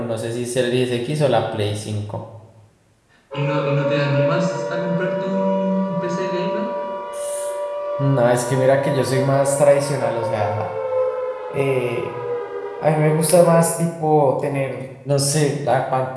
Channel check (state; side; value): identical; both; correlation 1.00